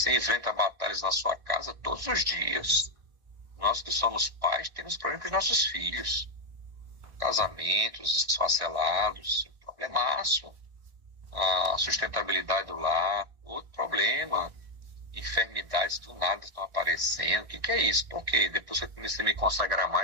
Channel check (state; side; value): late; left; 1.6 ms